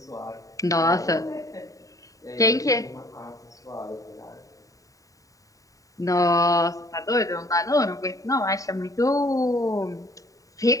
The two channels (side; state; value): right; late; 0.16 ms